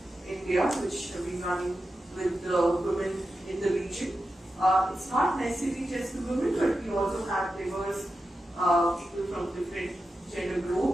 in India, which have been running with the women in the region. It's not necessarily just the women, but we also have diverse people from different gender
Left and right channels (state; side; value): normal; both; correlation 0.90